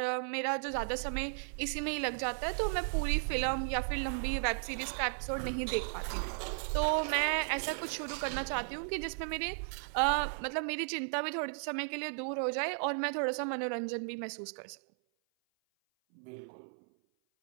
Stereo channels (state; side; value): silent; left; 54 dB below the other